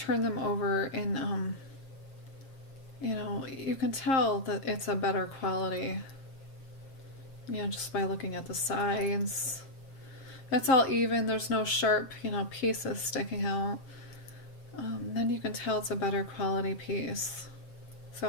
them over and you know, you can tell that it's a better quality, you know, just by looking at the sides. It's all even. There's no sharp, you know, pieces sticking out. Then you can tell it's a better quality piece.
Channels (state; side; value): late; right; 7.5 ms